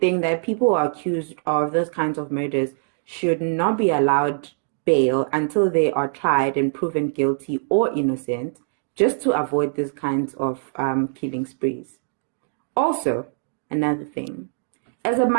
that people who are accused of those kinds of murders should not be allowed bail until they are tried and proven guilty or innocent, just to avoid these kinds of killing sprees. Also, another thing, as a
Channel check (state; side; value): silent; left; 63 dB below the other